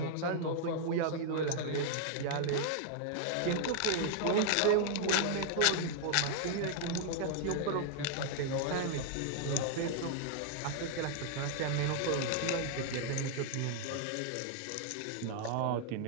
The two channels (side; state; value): both; different; correlation 0.00